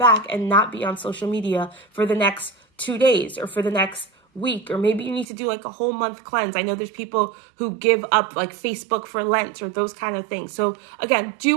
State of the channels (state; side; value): drops out; left; at 5.2 s